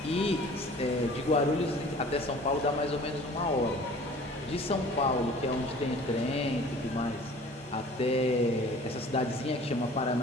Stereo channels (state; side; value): normal; both; correlation 0.47